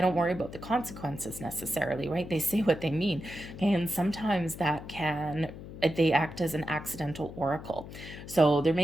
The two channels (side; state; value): left; noise; hum, 13 dB below the sound